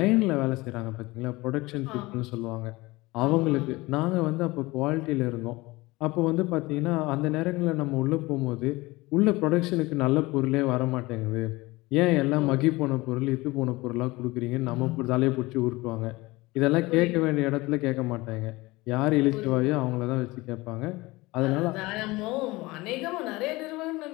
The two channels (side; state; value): right; quieter; 21.4 dB